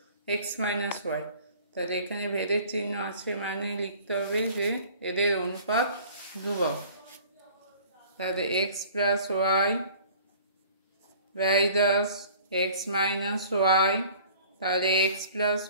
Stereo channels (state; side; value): inverted; both; correlation -0.49